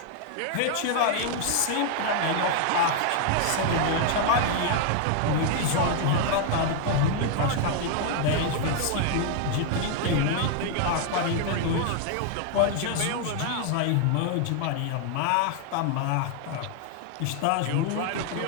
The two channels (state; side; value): different; both; correlation 0.00